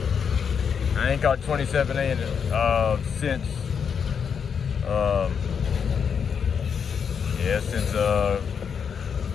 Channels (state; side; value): quieter; right; 6.9 dB